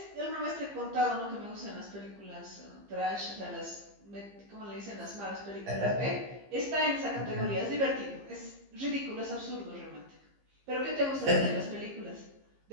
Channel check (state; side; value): late; left; 15 ms